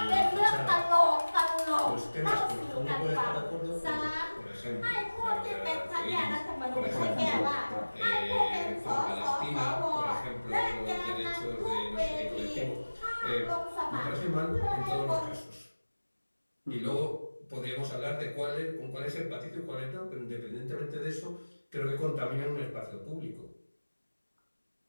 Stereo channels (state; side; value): inverted; both; correlation -1.00